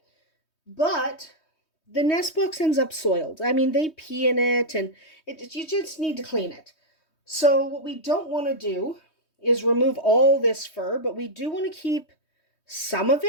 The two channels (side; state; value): right; late; 3.2 ms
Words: but the nest box ends up soiled. I mean, they pee in it and you just need to clean it. So what we don't want to do is remove all this fur, but we do want to keep some of